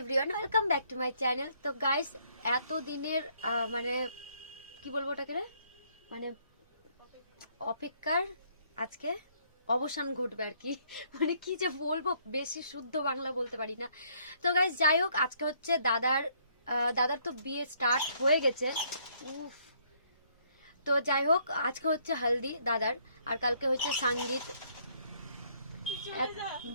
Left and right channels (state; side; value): inverted; both; correlation -0.67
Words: welcome back to my channel. তো guys, এত দিনের মানে কি বলবো ওটাকে, মানে অপেক্ষার আজকে অবসান ঘটবে আর কি। মানে কি যে বলবো, বেশি শুদ্ধ বাংলা বলতে পারি না। তো গাইস, যাই হোক, আজকে হচ্ছে দাদার তো বিয়ে স্টার্ট হয়ে গেছে। তো যাই হোক, আজকে হচ্ছে হলদি দাদার, আর কালকে হচ্ছে সঙ্গীত।